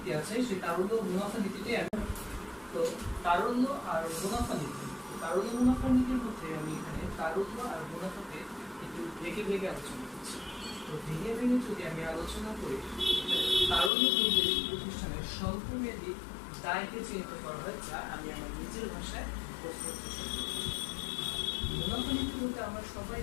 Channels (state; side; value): drops out; right; at 13.9 s